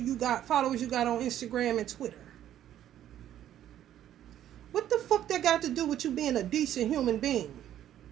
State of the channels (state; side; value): quieter; left; 11.5 dB